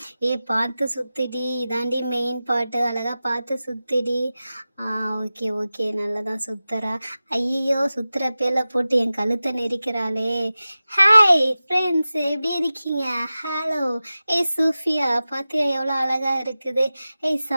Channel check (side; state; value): both; inverted; correlation -0.95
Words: பார்த்து சுத்திடி, இதாண்டி மெயின் பாட்டு. அழகா பார்த்து சுத்திடி. ஓகே ஓகே, நல்லா தான் சுத்துறா. ஐயோ, சுத்துற பேர்ல போட்டு என் கழுத்தை நெரிக்கிறாளே. ஹாய் ஃப்ரெண்ட்ஸ், எப்படி இருக்கீங்க? ஹலோ. சூஃபியா பாத்தியா எவ்வளோ அழகா இருக்குது?